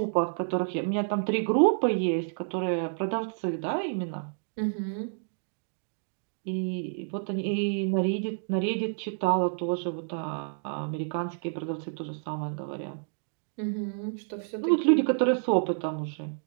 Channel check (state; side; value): silent; left; digital silence